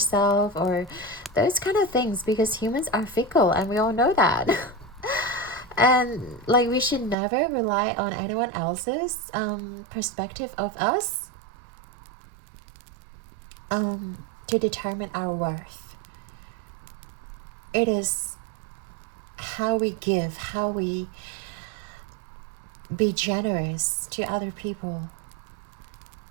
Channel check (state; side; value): drops out; left; at 7.2 s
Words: or those kind of things, because humans are fickle and we all know that. And like, we should never rely on anyone else's perspective of us to determine our worth. It is how we give, how we be generous to other people.